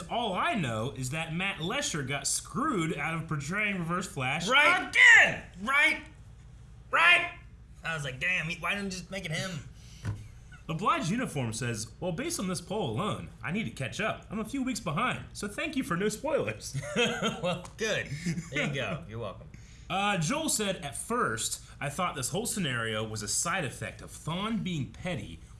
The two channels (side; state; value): both; identical; correlation 1.00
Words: all I know is that Matt Lesher got screwed out of portraying Reverse Flash again! Right! I was like, damn, why didn't you just make it him? Obliged Uniform says, well, based on this poll alone, I need to catch up. I'm a few weeks behind, so thank you for no spoilers. Well, good. There you go. You're welcome. Joel said, at first, I thought this whole scenario was a side effect of Thawne being petty